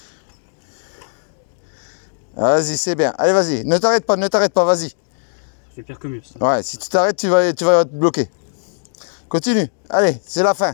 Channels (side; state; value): right; silent; digital silence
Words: Vas-y, c'est bien. Allez, vas-y. Ne t'arrête pas, vas-y. C'est pire que mieux, ça. Ouais, si tu t'arrêtes, tu vas te bloquer. Continue. Allez, c'est la fin.